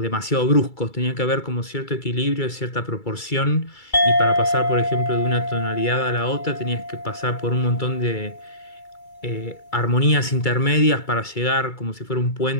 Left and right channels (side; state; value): right; late; 2.3 ms